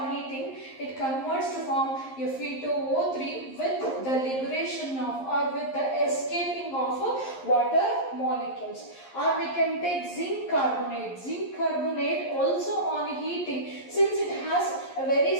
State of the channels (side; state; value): right; late; 11 ms